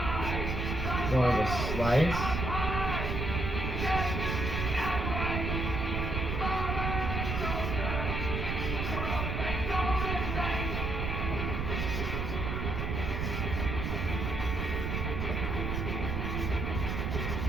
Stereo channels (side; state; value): right; noise; rumble, 1 dB below the sound